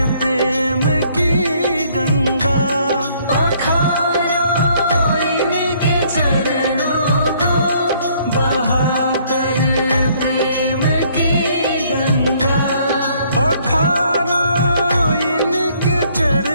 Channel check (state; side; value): inverted; both; correlation -0.63